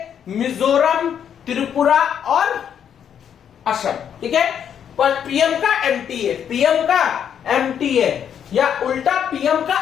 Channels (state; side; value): quieter; right; 8.6 dB